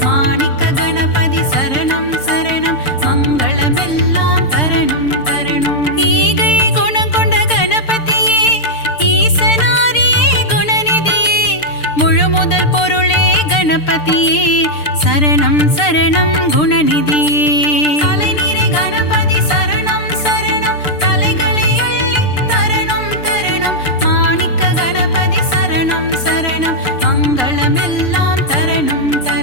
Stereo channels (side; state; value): right; late; 6.7 ms